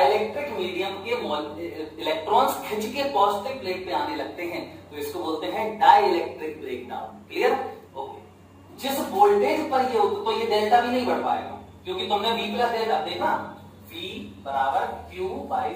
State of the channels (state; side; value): identical; both; correlation 1.00